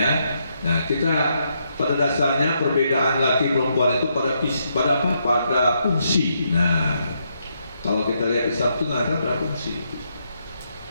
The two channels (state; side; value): inverted; both; correlation -0.78